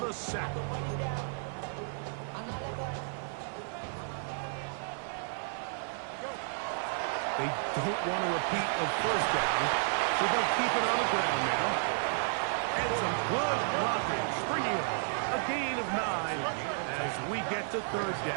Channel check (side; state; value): left; silent; 56 dB below the other